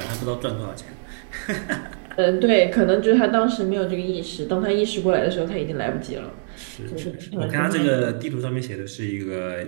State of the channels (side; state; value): left; silent; digital silence